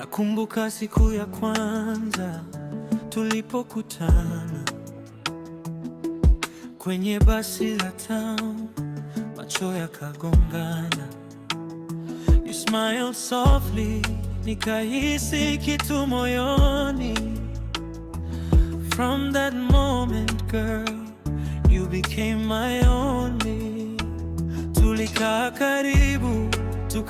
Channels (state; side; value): identical; both; correlation 1.00